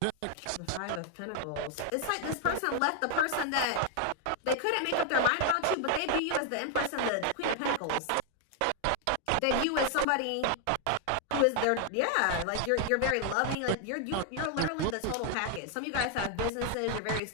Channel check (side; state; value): both; different; correlation 0.00